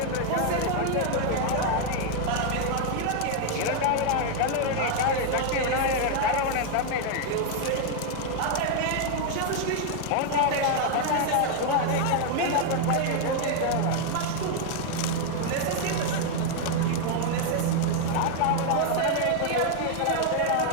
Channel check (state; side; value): different; both; correlation 0.00